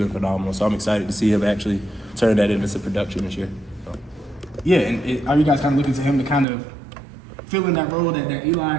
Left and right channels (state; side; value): drops out; left; at 6.5 s